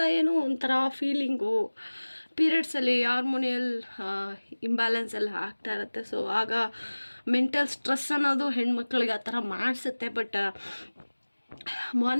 ಏನೋ ಒಂಥರ ಫೀಲಿಂಗು. ಪೀರಿಯಡ್ಸಲ್ಲಿ ಹಾರ್ಮೋನಿಯಲ್ ಇಂಬ್ಯಾಲೆನ್ಸ್ ಎಲ್ಲ ಆಗ್ತಾ ಇರುತ್ತೆ. ಸೊ ಆಗ ಮೆಂಟಲ್ ಸ್ಟ್ರೆಸ್ ಅನ್ನೋದು ಹೆಣ್ಮಕ್ಳಿಗೆ ಆ ಥರ ಮಾಡಿಸುತ್ತೆ. ಬಟ್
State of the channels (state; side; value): inverted; both; correlation -1.00